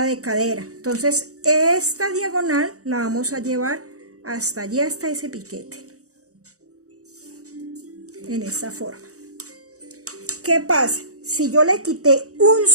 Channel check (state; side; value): late; left; 0.65 ms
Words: de cadera. Entonces esta diagonal la vamos a llevar hasta allí, hasta ese piquete, en esta forma. ¿Qué pasa? Si yo le quité 1